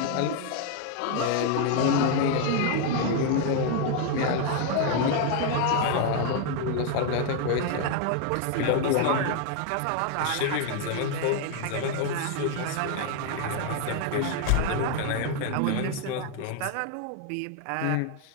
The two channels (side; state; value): both; different; correlation 0.00